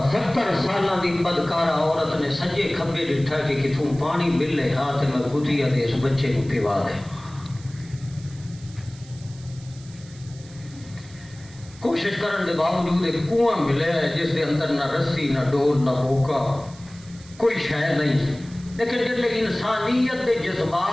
70 سالاں دی بدکارہ عورت نے سجے کھبے ڈٹھا کہ کتوں پانی ملے ہاتھ میں کتیا دے اس بچے کو پیوا دے۔ کوشش کرن دے باوجود ایک کنواں ملے ہے جس دے اندر نہ رسی نہ ڈول نہ بوکا، کوئی شے نہیں، لیکن جب انسانیت دے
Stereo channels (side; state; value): right; noise; hiss, 22 dB below the sound